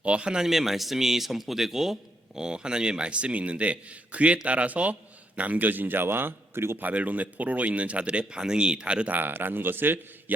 하나님의 말씀이 선포되고 하나님의 말씀이 있는데 그에 따라서 남겨진 자와 그리고 바벨론의 포로로 있는 자들의 반응이 다르다라는 것을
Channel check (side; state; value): both; normal; correlation 0.77